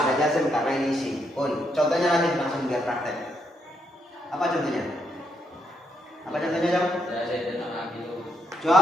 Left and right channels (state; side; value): normal; both; correlation 0.76